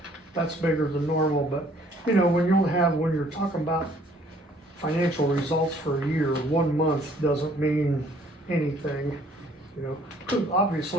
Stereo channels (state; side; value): normal; both; correlation 0.60